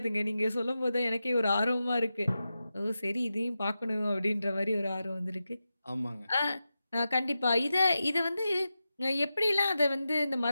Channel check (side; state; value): both; inverted; correlation -0.91